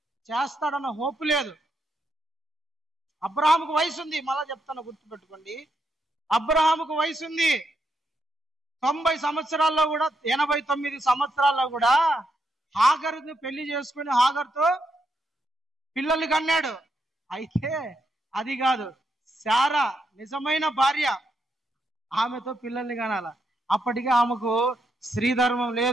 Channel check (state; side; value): normal; both; correlation 0.80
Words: చేస్తాడన్న హోపు లేదు. అబ్రహాముకు వయసు ఉంది, మళ్ళా చెప్తాను గుర్తుపెట్టుకోండి. అబ్రహాముకు వయసు ఉంది. 90 సంవత్సరాల్లో కూడా, 89 సంవత్సరాల్లో కూడా హాగరుని పెళ్లి చేసుకుని హాగర్తో పిల్లలు కన్నాడు. అయితే అది కాదు, శారా నిజమైన భార్య, ఆమెతో పిల్లల్ని కనాల. అప్పటికే ఆమెకు స్త్రీధర్మం